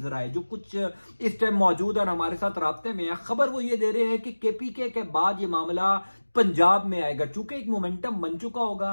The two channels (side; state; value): both; inverted; correlation -1.00